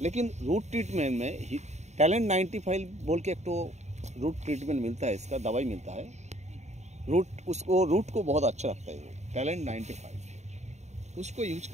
लेकिन रूट ट्रीटमेंट में टैलेंट 95 बोल के एक तो रूट ट्रीटमेंट मिलता है, इसका दवाई मिलता है। रूट को बहुत अच्छा रखता है वो टैलेंट 95, उसको यूज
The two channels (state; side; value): late; left; 0.33 ms